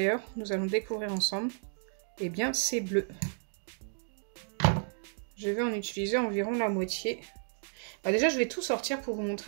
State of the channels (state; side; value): silent; left; 55 dB below the other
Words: nous allons découvrir ensemble. Eh bien c'est bleu. Je vais en utiliser environ la moitié. Déjà je vais tout sortir pour vous